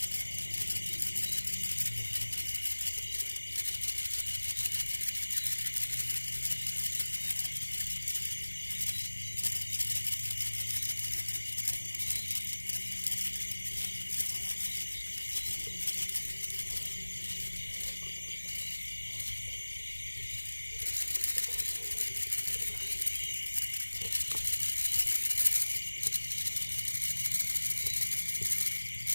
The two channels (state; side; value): inverted; both; correlation -1.00